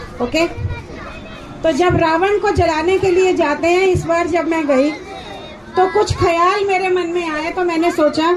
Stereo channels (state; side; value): identical; both; correlation 1.00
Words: ओके, तो जब रावण को जलाने के लिए जाते हैं, इस बार जब मैं गई तो कुछ ख्याल मेरे मन में आए, तो मैंने सोचा